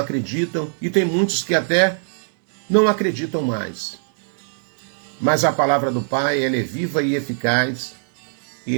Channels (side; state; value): left; silent; digital silence